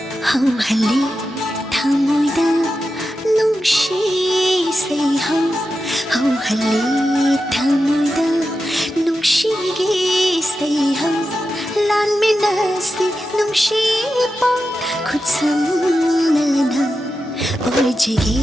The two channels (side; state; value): both; normal; correlation 0.90